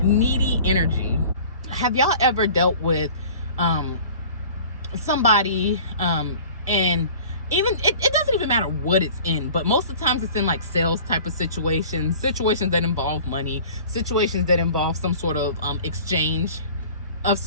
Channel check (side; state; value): both; inverted; correlation -0.44